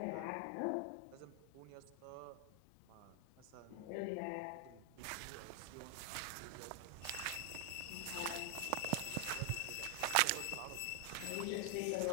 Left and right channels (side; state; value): both; different; correlation 0.00